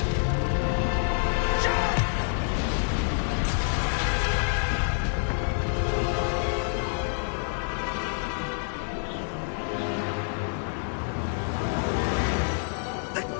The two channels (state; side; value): silent; right; 60 dB below the other